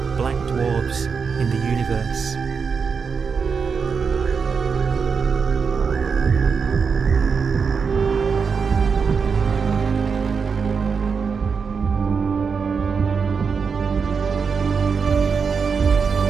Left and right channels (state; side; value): quieter; left; 5.7 dB